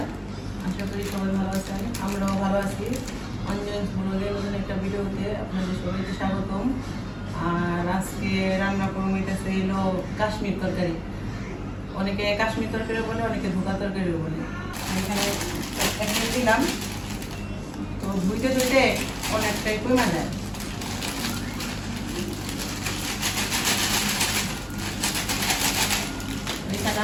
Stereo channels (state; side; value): identical; both; correlation 1.00